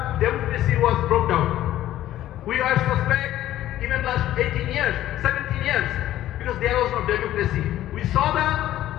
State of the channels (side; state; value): right; quieter; 13.4 dB